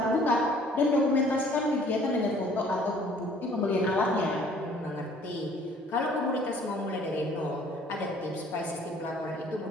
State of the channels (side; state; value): both; normal; correlation 0.56